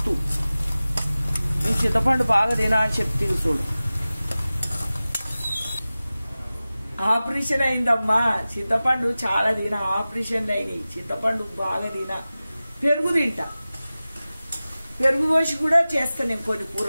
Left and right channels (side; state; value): both; inverted; correlation -0.97